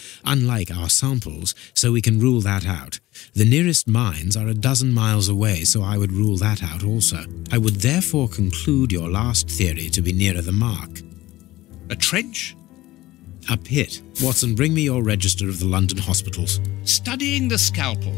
unlike our samples, so we can rule that out. The nearest mines are a dozen miles away, so I would rule that out also. I would therefore conclude your last theory to be nearer the mark. A trench? A pit. Watson, bring me your register of the London hospitals. Studying the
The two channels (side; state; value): right; quieter; 17.2 dB